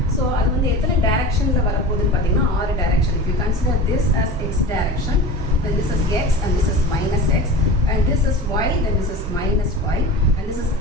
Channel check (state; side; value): normal; both; correlation 0.34